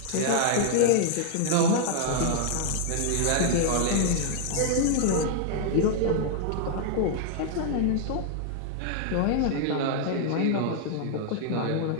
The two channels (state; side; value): different; both; correlation 0.00